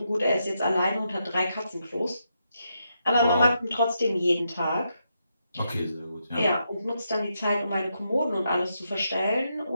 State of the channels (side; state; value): both; inverted; correlation -0.82